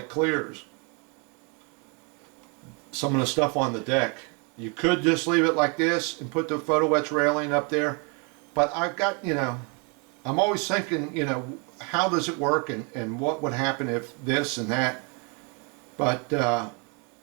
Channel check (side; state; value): left; quieter; 33.5 dB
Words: clears some of the stuff on the deck. You could just leave it like this and put the photo etch railing up there, but I've got, I'm always thinking, how does it work, and what would happen if this and that. But